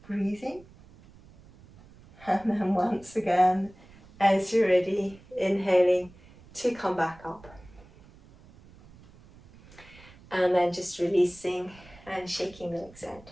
breathing. And then once again, as you're ready, inhaling to come back up. And then just releasing and shaking the legs out.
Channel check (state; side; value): noise; right; rumble, 23 dB below the sound